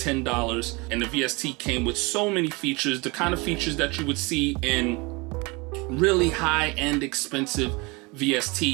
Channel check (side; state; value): left; quieter; 26.8 dB